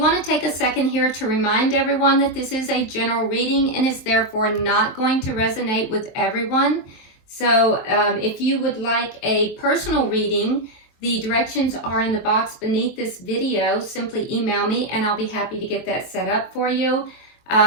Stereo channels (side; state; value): right; late; 23 ms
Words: to take a second here to remind everyone that this is a general reading and is therefore not going to resonate with everyone. So if you would like a personal reading, the directions are in the box beneath this video. Simply email me and I'll be happy to get that set up for you.